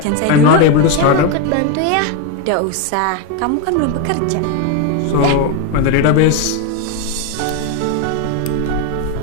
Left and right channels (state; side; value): different; both; correlation 0.02